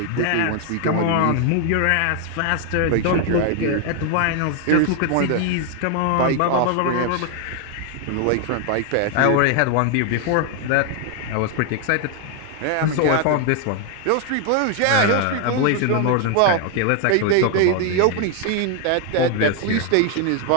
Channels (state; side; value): different; both; correlation 0.00